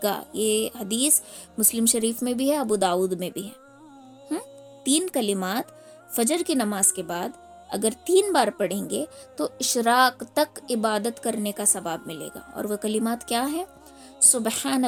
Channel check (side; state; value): both; identical; correlation 1.00